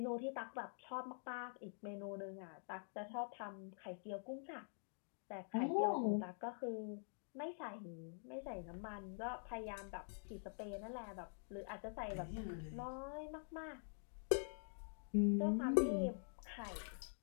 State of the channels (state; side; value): silent; right; digital silence